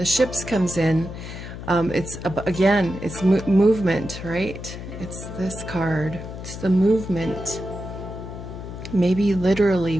ships comes in, it's again, it's movement, right? It's this card. It's the movement. Maybe literally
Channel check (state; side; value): noise; left; hum, 10 dB below the sound